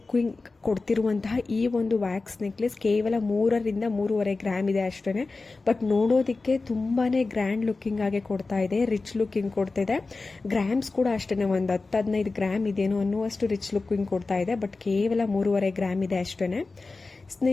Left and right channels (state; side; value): quieter; right; 3.7 dB